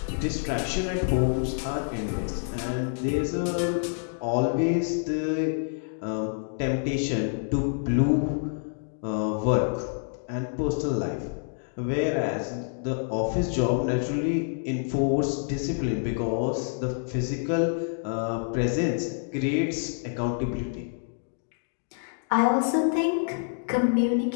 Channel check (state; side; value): silent; right; digital silence